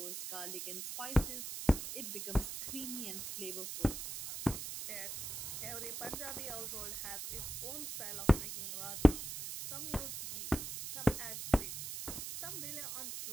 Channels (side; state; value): right; noise; hiss, 6 dB below the sound